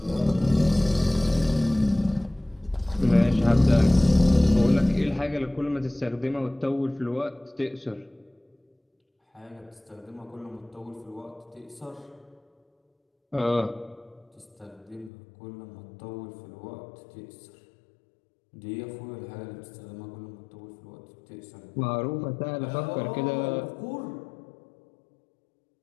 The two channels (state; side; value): drops out; right; at 15.1 s